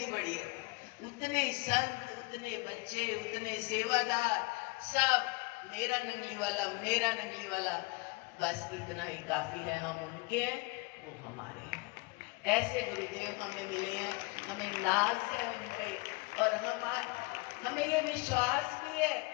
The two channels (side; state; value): right; quieter; 26.3 dB